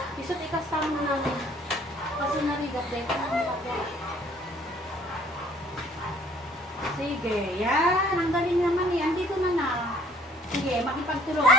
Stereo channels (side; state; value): both; normal; correlation 0.58